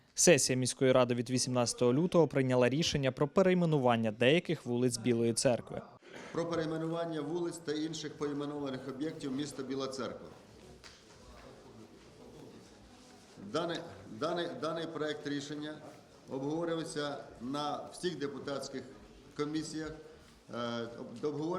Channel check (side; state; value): both; identical; correlation 1.00